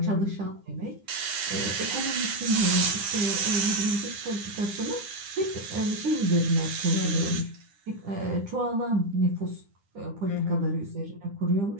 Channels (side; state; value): left; late; 9.9 ms